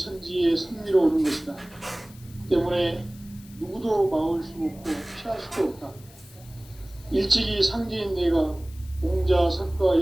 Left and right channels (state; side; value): noise; left; hiss, 24 dB below the sound